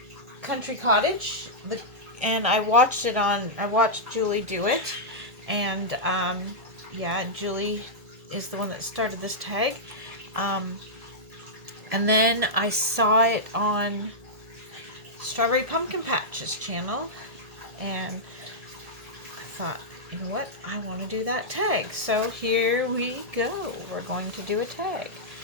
Country Cottage, and I watched Julie do it, and yeah, Julie is the one that started this tag. And then I saw it on Strawberry Pumpkin Patch's channel, and I thought, you know what, I want to do that tag. So here we go. We're going to do a tag.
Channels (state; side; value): late; left; 1.7 ms